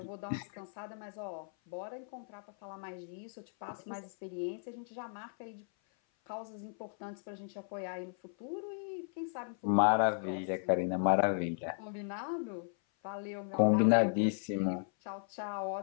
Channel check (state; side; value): silent; right; 54 dB below the other